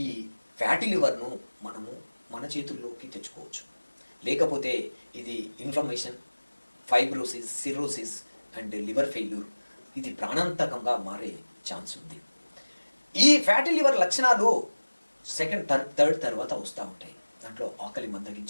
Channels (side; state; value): both; inverted; correlation -1.00